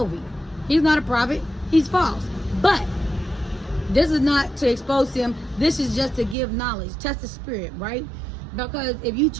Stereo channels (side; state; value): left; drops out; at 6.4 s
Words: he's not a prophet, he's false. But this is not to expose him. This is just to give knowledge, test the spirit, right? Because if you